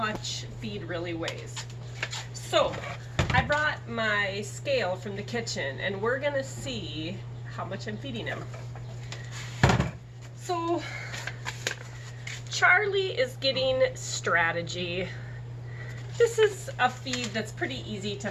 feed really weighs. So I brought my scale from the kitchen and we're going to see how much I'm feeding him. So Charlie is getting Strategy. This is a feed that's pretty easy to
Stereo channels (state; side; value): identical; both; correlation 1.00